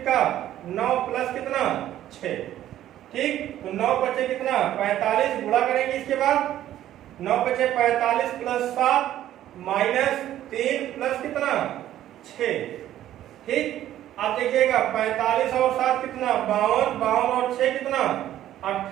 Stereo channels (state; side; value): quieter; left; 12.6 dB